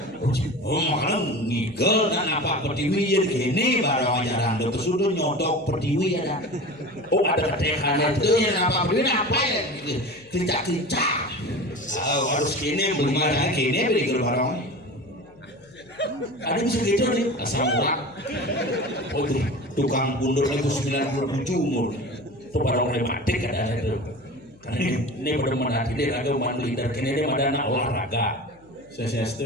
Oh makanya ngigel dan apa pertiwi yang gini barang ajaran dokter sudah nyodok pertiwi ada. Oh ada ketekannya itu yang apa pertiwi apa ya kicak. Oh harus gini belum ada gini beri barang. Ada bisa gitu nih asal murah. Oh tuh tukang bundur itu 97 umur. Itu barang rematik ada itu. Karena ini benar-benar ini raga mandu leader kini dia ada anak olahraga. Saya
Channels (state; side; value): noise; left; hum, 27 dB below the sound